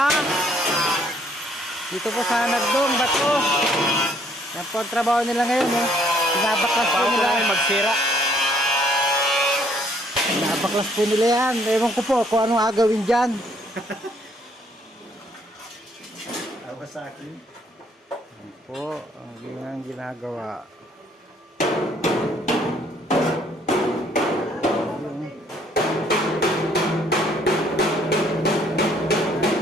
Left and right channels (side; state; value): both; normal; correlation 0.64